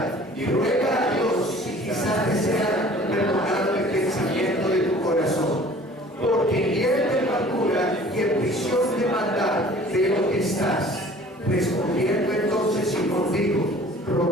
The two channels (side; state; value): both; normal; correlation 0.49